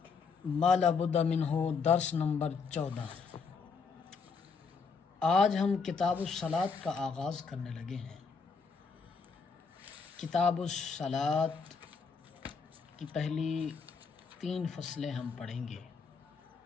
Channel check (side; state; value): right; quieter; 5.1 dB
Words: ما لا بد منہ درس نمبر 14۔ آج ہم کتاب الصلاۃ کا آغاز کرنے لگے ہیں۔ کتاب الصلاۃ کی پہلی 3 فصلیں ہم پڑھیں گے